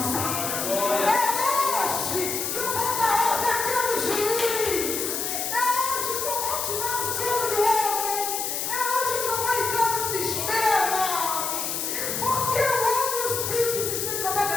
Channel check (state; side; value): noise; left; hiss, 2 dB below the sound